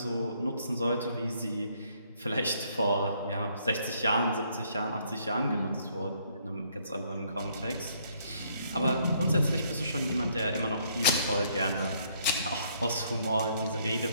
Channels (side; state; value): both; inverted; correlation -0.68